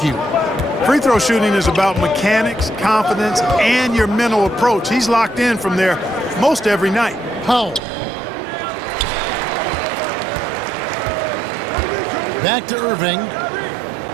you. Free throw shooting is about mechanics, confidence, and your mental approach. He's locked in from there most every night. Powell. Back to Irving.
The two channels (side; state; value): left; drops out; at 7.8 s